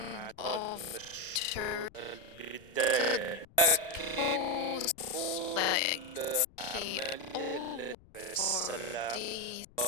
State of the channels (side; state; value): left; noise; rumble, 25 dB below the sound